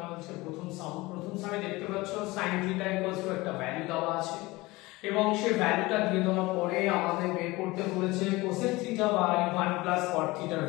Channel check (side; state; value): right; quieter; 21.3 dB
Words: প্রথম সামে দেখতে পাচ্ছ sin θ = একটা ভ্যালু দেওয়া আছে এবং সেই ভ্যালুটা দিয়ে দেওয়ার পরে আমাদের বের করতে বলেছে cosec θ বাই 1 প্লাস cot θ এর